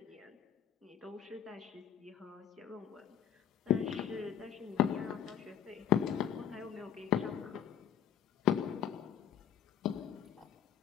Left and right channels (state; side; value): quieter; right; 9.5 dB